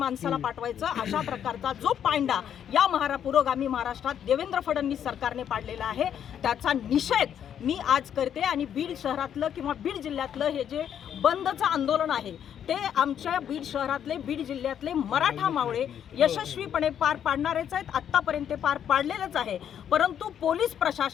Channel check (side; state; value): right; quieter; 9.2 dB